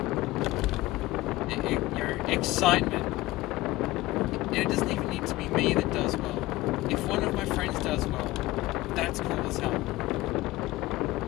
excitement. And it doesn't even need to be me that does well. If one of my friends does well, that's cool as hell.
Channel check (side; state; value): right; quieter; 18.5 dB